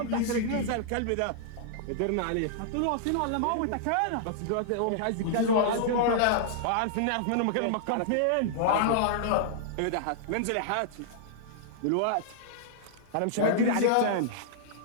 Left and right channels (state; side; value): different; both; correlation -0.01